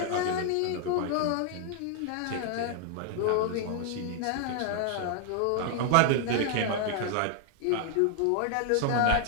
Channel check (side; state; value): both; different; correlation 0.00